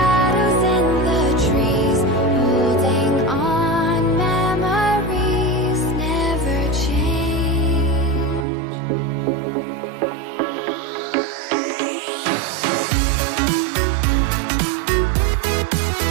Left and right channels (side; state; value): left; drops out; at 8.5 s